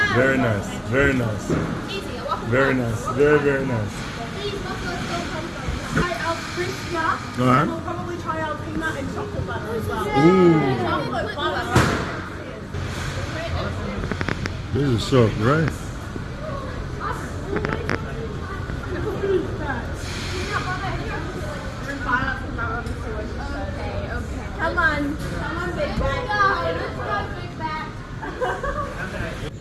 Very nice. Very nice. Very nice. Very, very nice. Try our crisp jar, and we'll probably try our peanut and chocolate butter as well. Ooh. Chocolate butter. This is so right. Come on, big bag.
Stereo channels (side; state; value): both; identical; correlation 1.00